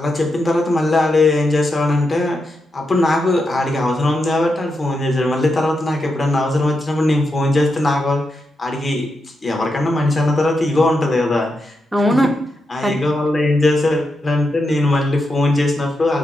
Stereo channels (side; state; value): both; normal; correlation 0.85